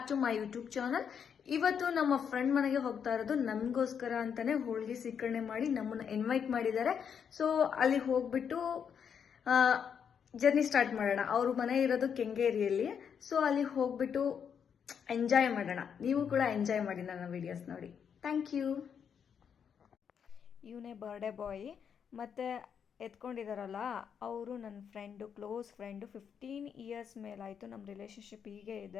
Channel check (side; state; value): right; quieter; 7.4 dB